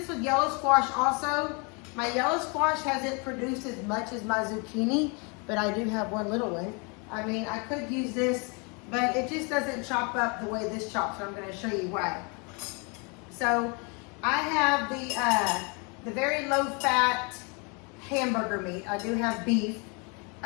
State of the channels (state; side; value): quieter; right; 32.7 dB